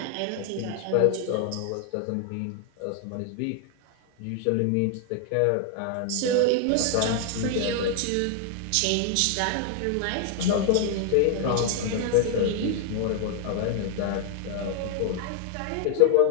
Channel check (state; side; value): different; both; correlation 0.00